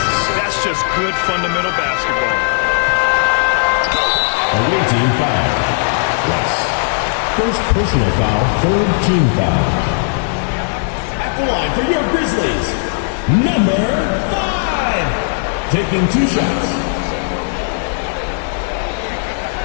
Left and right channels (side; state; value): right; silent; 60 dB below the other